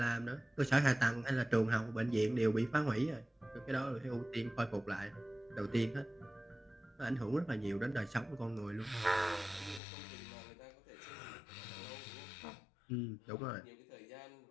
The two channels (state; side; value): drops out; right; at 9.8 s